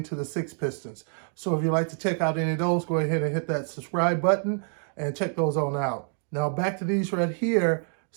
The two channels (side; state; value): left; silent; 56 dB below the other